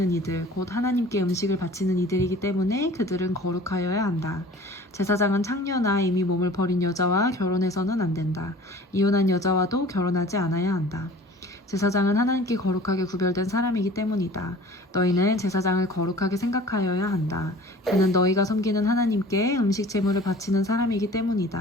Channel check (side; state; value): both; normal; correlation 0.45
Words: 이들, 곧 하나님께 음식을 바치는 이들이기 때문에 그들은 거룩하여야 한다. 제사장은 창녀나 이미 몸을 버린 여자와 결혼해서는 안 된다. 이혼한 여자와도 결혼하지 않아야 한다. 제사장은 하나님께 거룩하게 구별된 사람이기 때문이다. 너희는 제사장을 거룩하게 생각하여야 한다. 그는 너희가 섬기는 하나님께 음식 제물을 바치는 사람이기